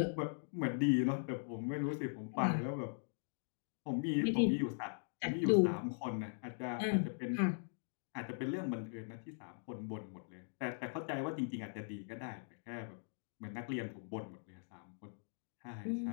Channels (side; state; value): right; silent; digital silence